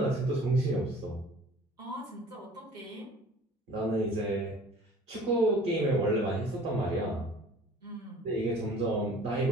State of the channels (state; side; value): normal; both; correlation 0.47